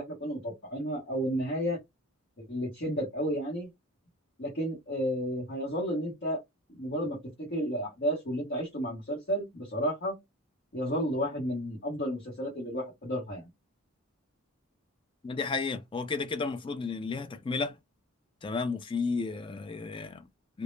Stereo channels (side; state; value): both; normal; correlation 0.37